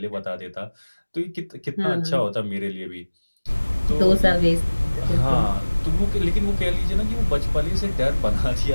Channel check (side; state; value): both; inverted; correlation -1.00